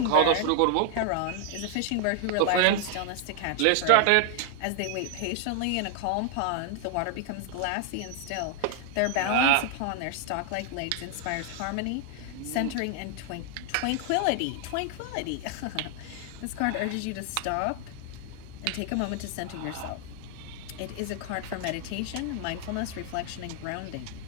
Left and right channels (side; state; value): both; different; correlation 0.00